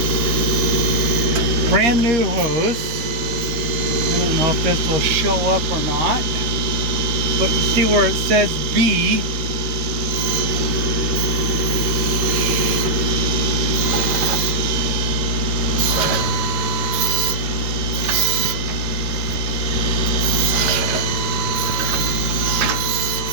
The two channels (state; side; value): late; left; 13 ms